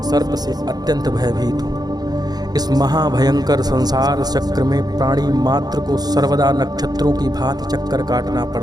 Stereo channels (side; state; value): left; late; 0.19 ms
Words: से अत्यंत भयभीत हूँ। इस महाभयंकर संसार चक्र में प्राणी मात्र को सर्वदा नक्षत्रों की भांति चक्कर काटना